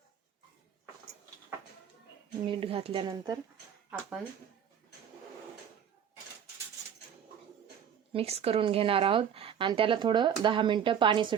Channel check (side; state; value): left; quieter; 8.4 dB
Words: मीठ घातल्यानंतर आपण मिक्स करून घेणार आहोत आणि त्याला थोडं 10 मिनिटं पाणी